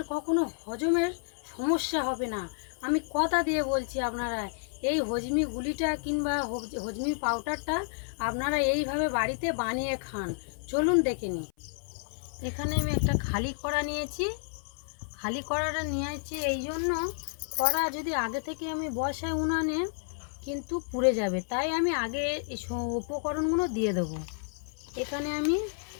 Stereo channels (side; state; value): right; silent; 58 dB below the other